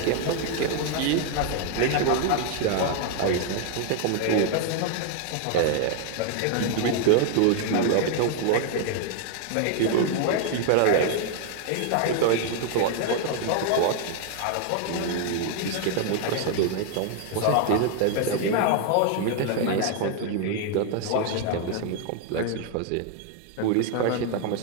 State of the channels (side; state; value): both; different; correlation 0.00